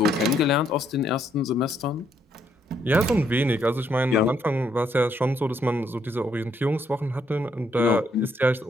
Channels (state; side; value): normal; both; correlation 0.72